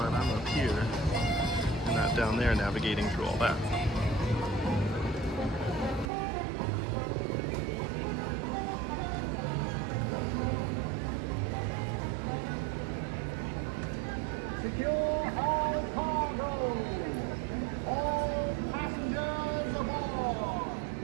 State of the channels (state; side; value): drops out; left; at 6.1 s